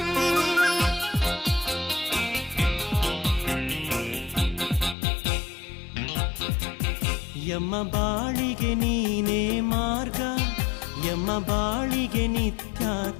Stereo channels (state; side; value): drops out; right; at 5.0 s